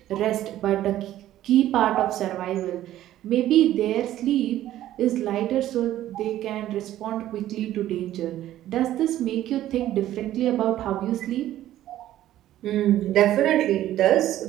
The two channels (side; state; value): left; quieter; 13.3 dB